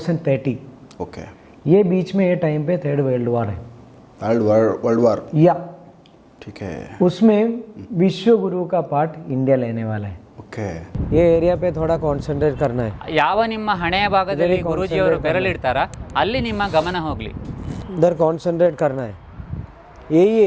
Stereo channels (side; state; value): both; identical; correlation 1.00